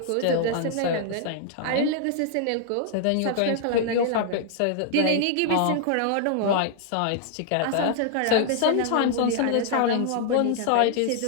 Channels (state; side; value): different; both; correlation 0.00